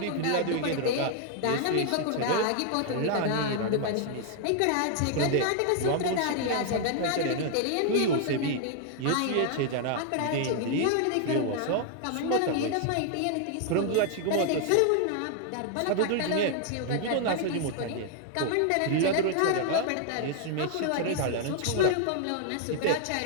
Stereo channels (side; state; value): both; different; correlation 0.00